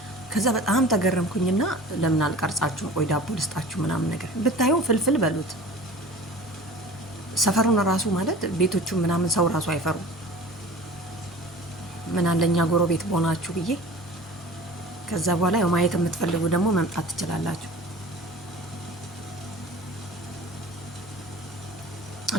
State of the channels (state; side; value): normal; both; correlation 0.40